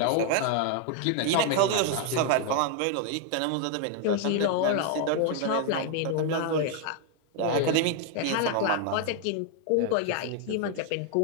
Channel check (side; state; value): both; different; correlation 0.00